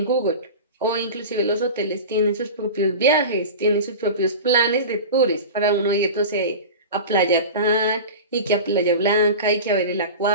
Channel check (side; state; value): both; inverted; correlation -0.30